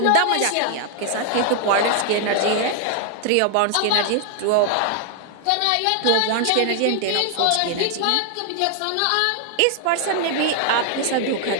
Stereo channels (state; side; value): different; both; correlation 0.00